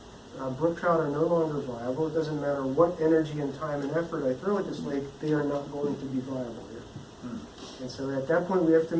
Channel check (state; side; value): identical; both; correlation 1.00